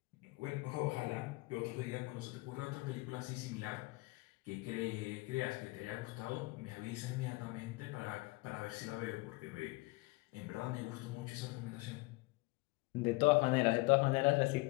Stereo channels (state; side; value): quieter; right; 23.5 dB